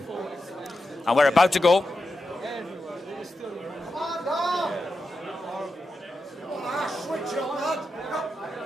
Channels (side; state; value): both; normal; correlation 0.89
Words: And we're about to go.